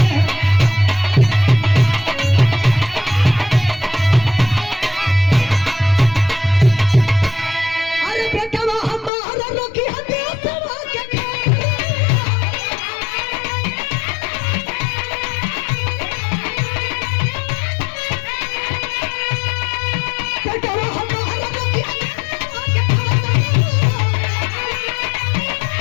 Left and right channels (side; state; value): right; drops out; at 9.1 s